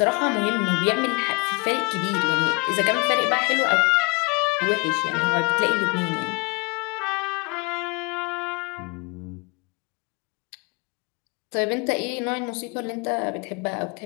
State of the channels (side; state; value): right; quieter; 28.3 dB